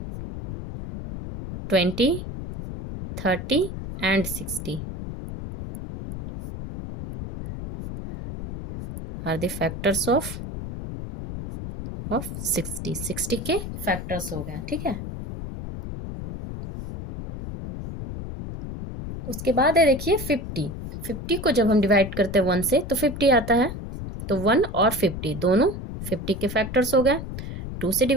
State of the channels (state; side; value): noise; left; rumble, 8 dB below the sound